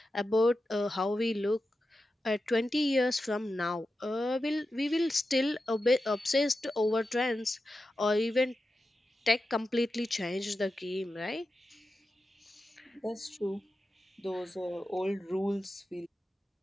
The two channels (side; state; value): both; normal; correlation 0.91